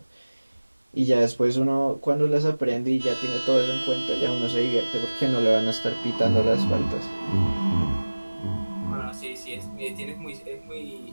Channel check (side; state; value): both; inverted; correlation -1.00